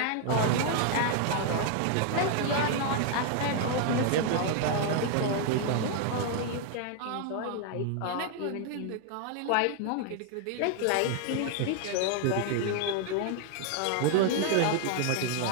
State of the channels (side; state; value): both; different; correlation 0.00